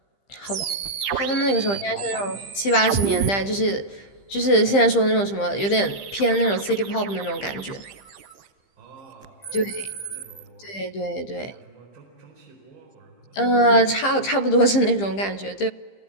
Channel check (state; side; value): late; right; 15 ms